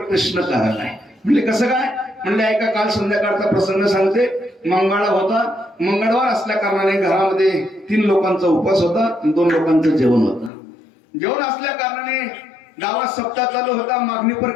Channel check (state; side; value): drops out; right; at 10.5 s